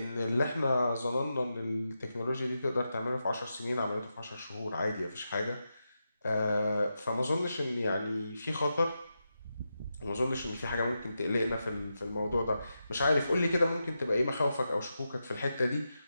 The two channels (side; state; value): both; inverted; correlation -0.88